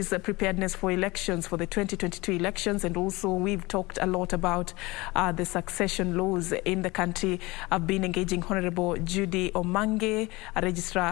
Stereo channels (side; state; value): right; quieter; 22.6 dB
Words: preparedness for elections, for the 2022 elections, and also we've talked a lot about the succession laws in the country. I've been engaging Honorable Judy Omange, a